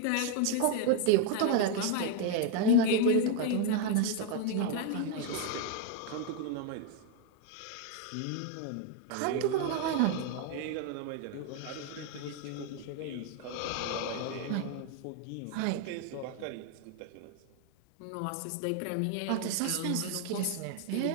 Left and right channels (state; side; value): different; both; correlation 0.01